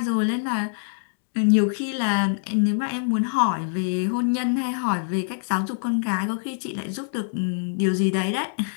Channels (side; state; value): right; silent; digital silence